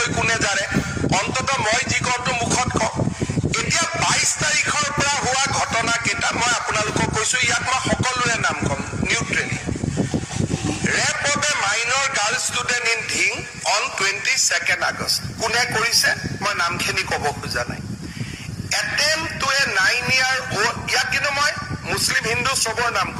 কোনে জাৰে অন্তত মই যি কওঁটো মুখত কওঁ এতিয়া 22 তাৰিখৰ পৰা হোৱা ঘটনা কেইটা মই আপোনালোকক কৈছো ইয়াত মই সকলোৰে নাম কম neutrally rape of a minor girl student in Dhing on 22nd August কোনে কৰিছে মই নামখিনি ক'ব খোজা নাই attempt to a 9-year old ইয়াত কিন্তু মই মুছলিম হিন্দু সবৰ নাম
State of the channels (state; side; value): identical; both; correlation 1.00